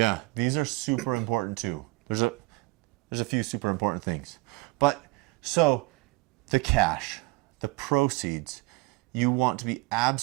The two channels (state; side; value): quieter; left; 22.6 dB